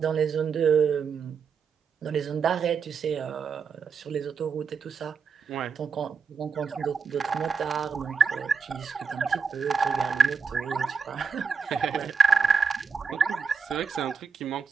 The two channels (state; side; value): quieter; left; 5.7 dB